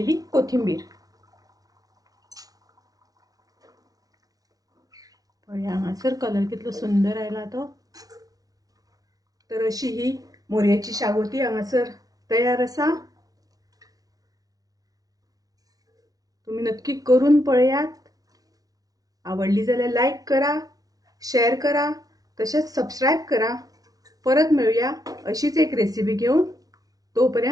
कोथिंबीर। पळया हांगासर कलर कितलो सुंदर आयला तो। तर अशी ही मोरयेची शागोती हांगासर तयार आसा। तुम्ही नक्की करून पळयात। आवडली जाल्यार लाईक करा, शेअर करा, तसेच सबस्क्राइब करा। परत मिळूया अशीच एक रेसिपी घेऊन।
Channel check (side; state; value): left; late; 0.18 ms